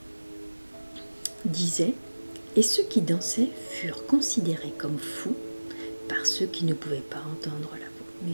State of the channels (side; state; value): both; inverted; correlation -1.00